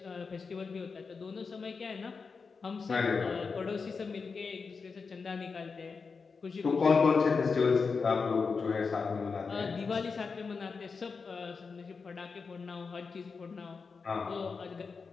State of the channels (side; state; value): right; quieter; 5.0 dB